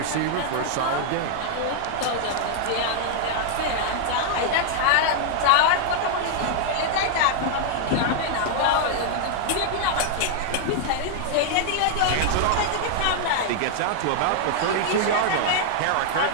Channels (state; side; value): different; both; correlation -0.01